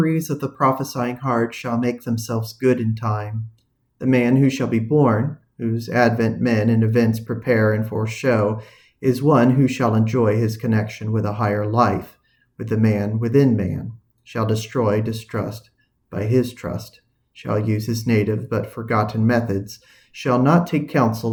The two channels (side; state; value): both; identical; correlation 1.00